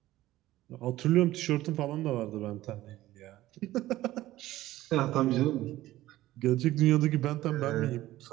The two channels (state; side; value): quieter; left; 15.7 dB